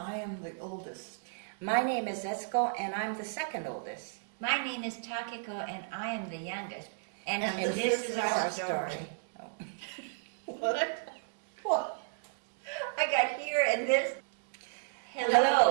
am the oldest. My name is Etsuko, and I'm the second oldest. My name is Takeko, and I am the youngest. And this is our story. Oh. What? I got here and this.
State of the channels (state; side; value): silent; left; digital silence